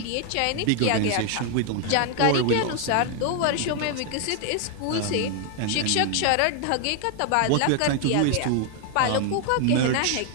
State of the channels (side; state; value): both; different; correlation 0.00